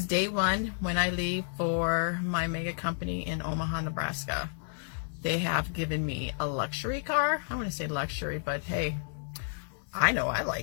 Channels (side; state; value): right; silent; digital silence